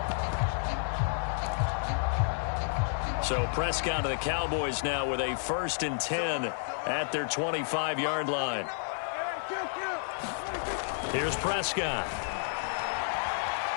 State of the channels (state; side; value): silent; right; digital silence